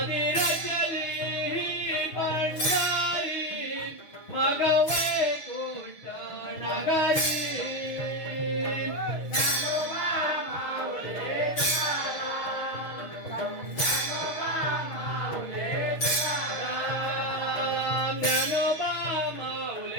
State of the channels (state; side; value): late; right; 6.3 ms